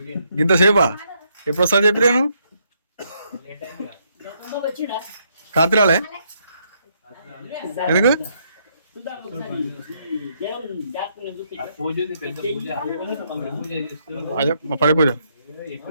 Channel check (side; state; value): both; inverted; correlation -0.74